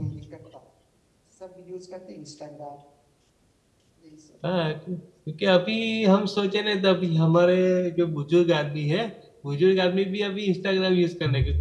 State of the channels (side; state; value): both; identical; correlation 1.00